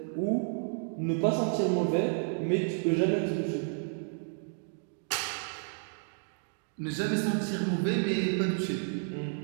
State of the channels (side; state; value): left; silent; digital silence